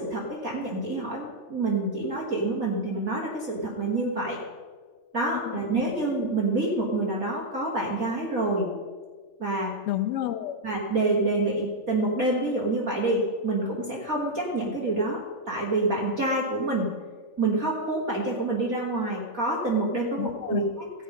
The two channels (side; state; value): right; late; 3.4 ms